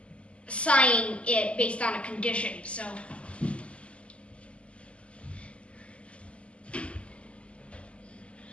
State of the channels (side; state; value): right; late; 0.057 ms